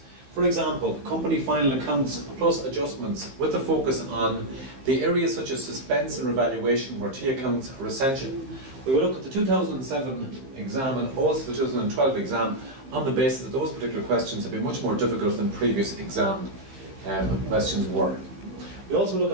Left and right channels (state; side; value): late; left; 15 ms